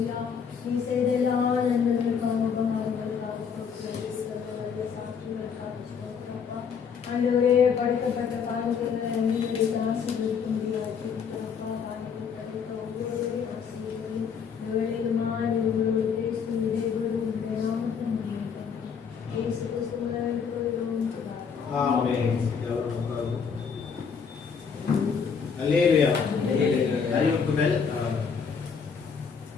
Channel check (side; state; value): right; quieter; 6.4 dB